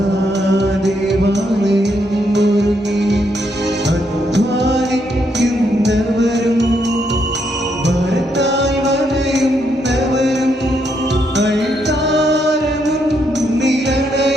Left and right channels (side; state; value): both; normal; correlation 0.76